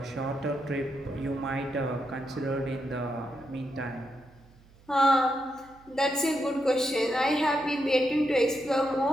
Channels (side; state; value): right; noise; hum, 27 dB below the sound